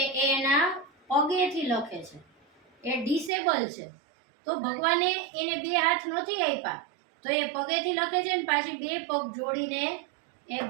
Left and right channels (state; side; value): drops out; left; at 3.3 s